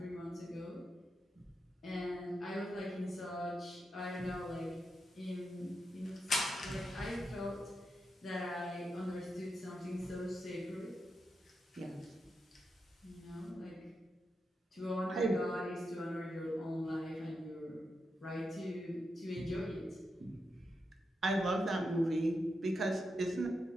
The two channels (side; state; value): both; normal; correlation 0.86